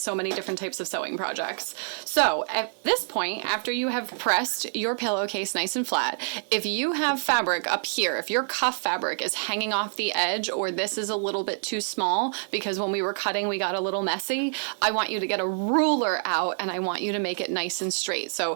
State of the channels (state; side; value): silent; left; digital silence